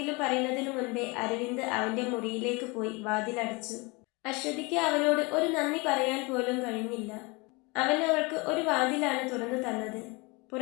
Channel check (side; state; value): right; quieter; 27.2 dB